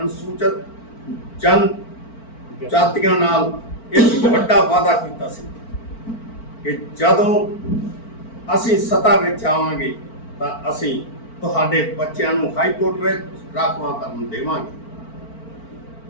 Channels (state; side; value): late; right; 4.4 ms